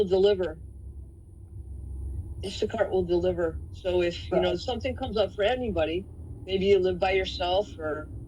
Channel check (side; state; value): both; identical; correlation 1.00